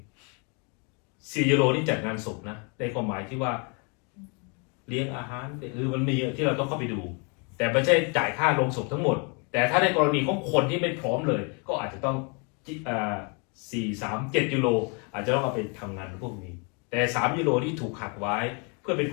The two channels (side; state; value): right; quieter; 34.7 dB